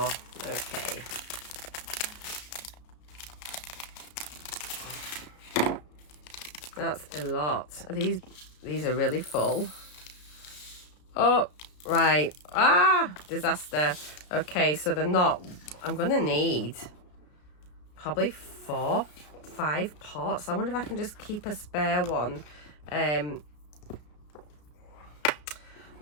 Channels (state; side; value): late; right; 33 ms